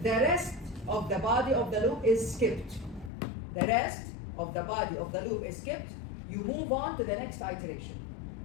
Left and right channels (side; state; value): right; drops out; at 3.1 s